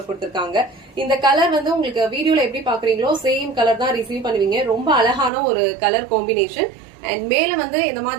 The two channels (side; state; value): left; drops out; at 5.3 s